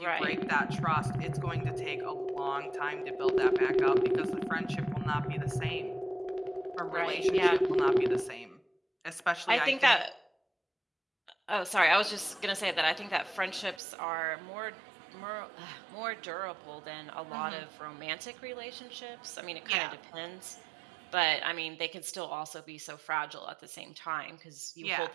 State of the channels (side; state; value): left; drops out; at 13.8 s